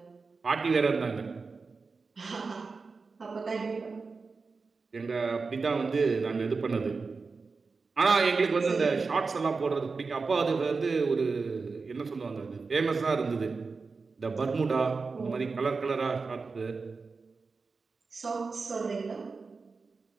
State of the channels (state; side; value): quieter; left; 4.4 dB